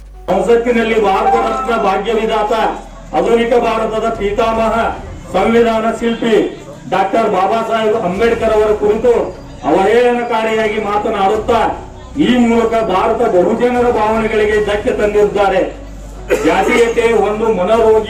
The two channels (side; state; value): both; identical; correlation 1.00